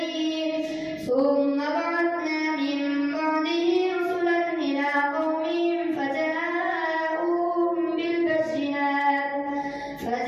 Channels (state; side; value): identical; both; correlation 1.00